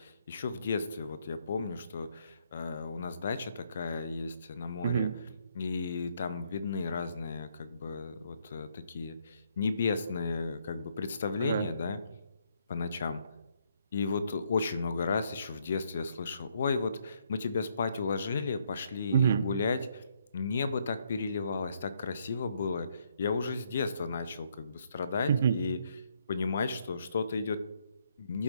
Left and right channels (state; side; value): inverted; both; correlation -0.72